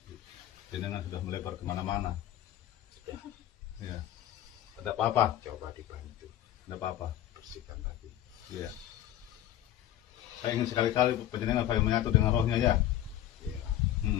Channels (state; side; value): quieter; right; 12.6 dB